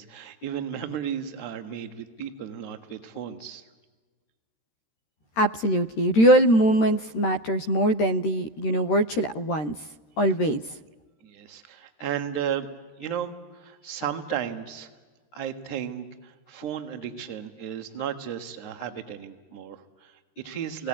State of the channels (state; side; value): late; right; 13 ms